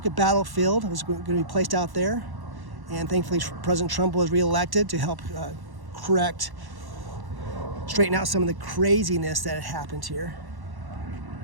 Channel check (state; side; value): late; left; 1.1 ms